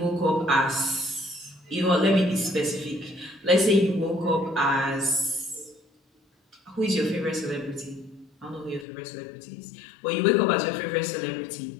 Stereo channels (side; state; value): right; drops out; at 8.8 s